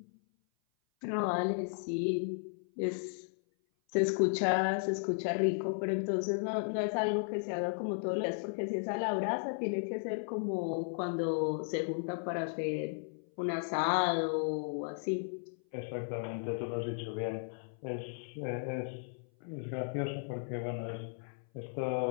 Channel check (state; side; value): silent; right; 54 dB below the other